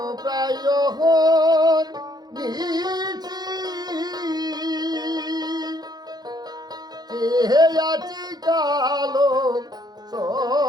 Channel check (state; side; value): late; left; 0.19 ms